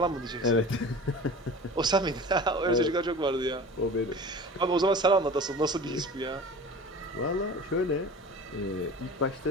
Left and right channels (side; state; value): both; normal; correlation 0.37